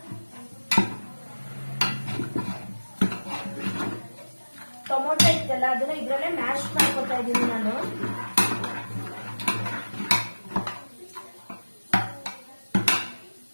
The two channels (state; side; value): inverted; both; correlation -1.00